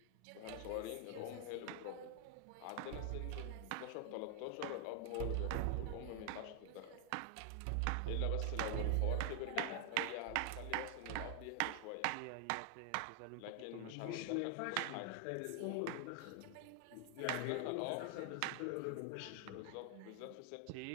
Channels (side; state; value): both; different; correlation 0.00